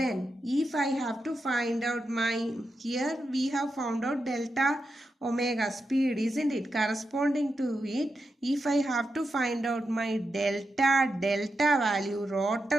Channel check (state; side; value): normal; both; correlation 0.87